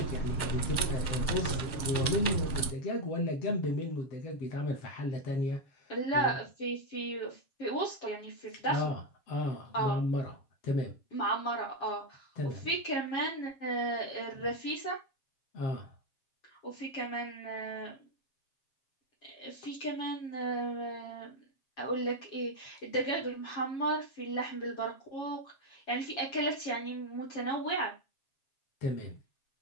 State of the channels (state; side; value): late; right; 7.4 ms